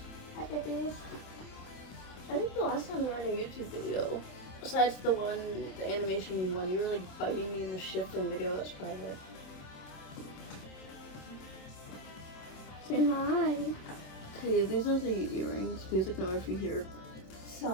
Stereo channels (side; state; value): right; late; 27 ms